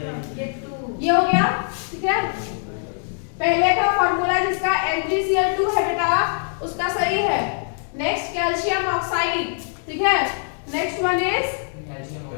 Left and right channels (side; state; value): right; silent; digital silence